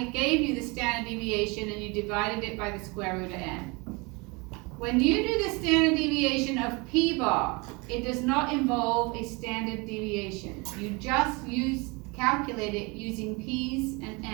gave you the standard deviation and you divided it by the square root of n. When you do the standard deviation of p bar, it does not involve a standard deviation. You just calculate it using p's and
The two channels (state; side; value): quieter; left; 27.5 dB